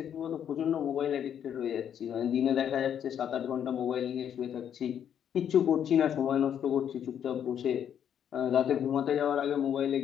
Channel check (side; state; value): right; quieter; 9.1 dB